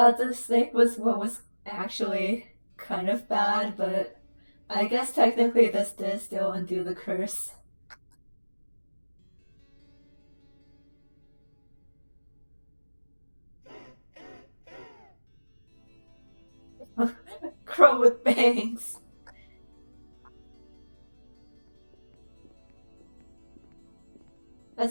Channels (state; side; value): inverted; both; correlation -1.00